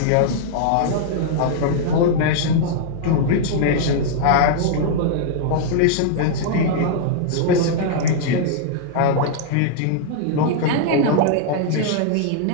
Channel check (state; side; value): different; both; correlation -0.01